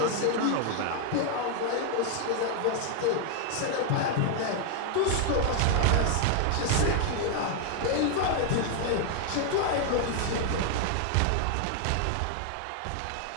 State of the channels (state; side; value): different; both; correlation 0.00